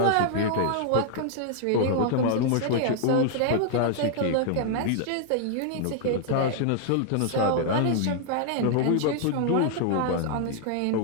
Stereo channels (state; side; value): different; both; correlation -0.01